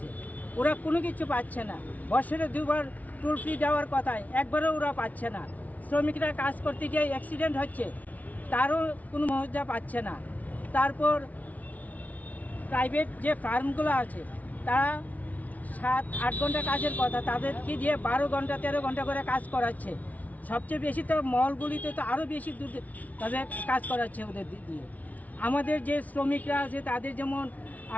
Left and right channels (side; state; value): right; late; 0.073 ms